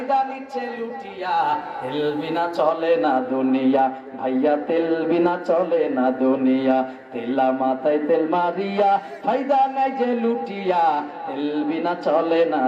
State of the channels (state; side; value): identical; both; correlation 1.00